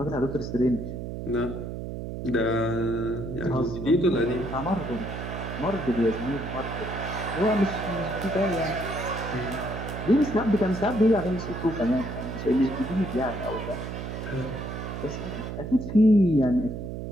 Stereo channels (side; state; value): right; noise; hum, 6 dB below the sound